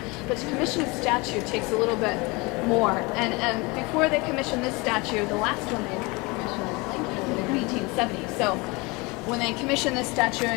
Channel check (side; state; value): right; quieter; 25.9 dB